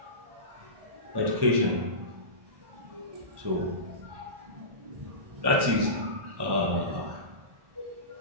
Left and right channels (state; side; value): late; left; 1.1 ms